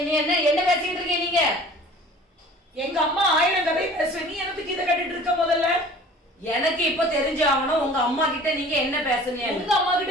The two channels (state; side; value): normal; both; correlation 0.46